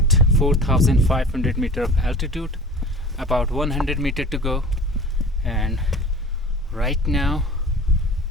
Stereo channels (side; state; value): both; normal; correlation 0.41